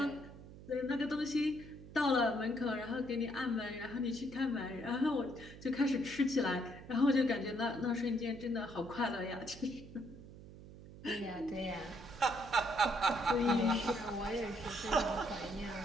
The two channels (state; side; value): noise; right; hum, 16 dB below the sound